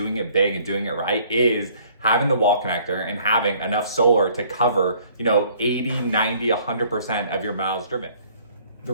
it big and doing it right is having the wall connector and having enough solar to cover, 80, 90, 100% of your miles driven. The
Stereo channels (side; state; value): both; inverted; correlation -0.58